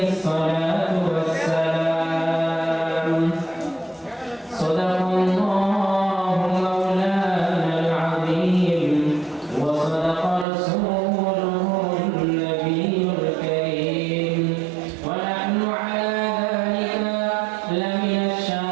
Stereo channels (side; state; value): left; drops out; at 10.5 s